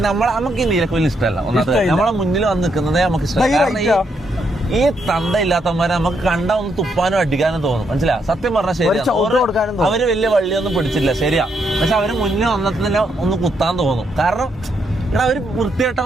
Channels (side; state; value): both; normal; correlation 0.77